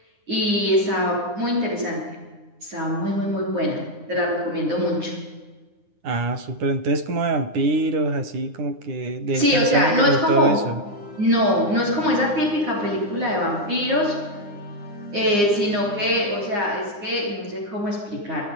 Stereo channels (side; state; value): left; late; 9.8 ms